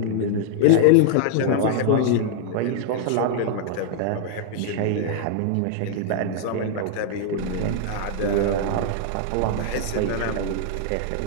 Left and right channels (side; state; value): both; different; correlation -0.01